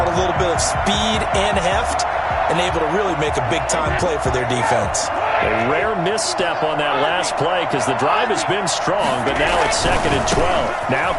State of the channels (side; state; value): both; identical; correlation 1.00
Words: a little bit of speed and heft, and able to really make a big-time play for their defense. A rare misstep on that last play because the drive has been strong, but now it's 2nd and 12. Now